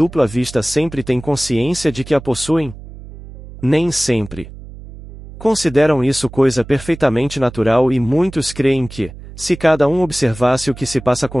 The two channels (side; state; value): right; noise; hum, 15 dB below the sound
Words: vista sempre têm consciência de que a possuem? Nem sempre. Consideram isso coisa perfeitamente natural e muitos creem que, se cada um observasse o que se passa